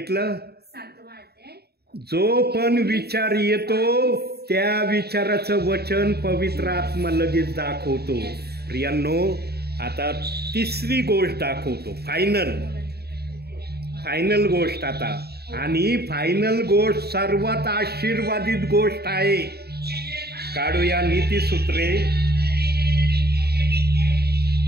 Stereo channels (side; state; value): left; late; 0.47 ms